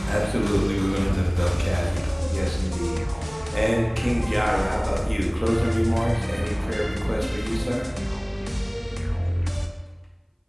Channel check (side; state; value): both; identical; correlation 1.00